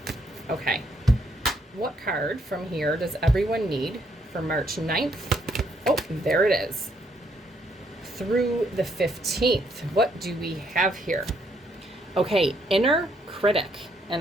Okay. What card from here does everyone need for March 9th? Oh, there it is. Through the 15th. What do we have here? Okay, inner critic. And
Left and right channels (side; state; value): both; normal; correlation 0.72